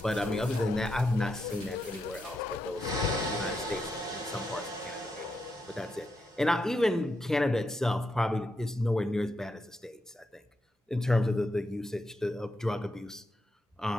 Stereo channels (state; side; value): normal; both; correlation 0.84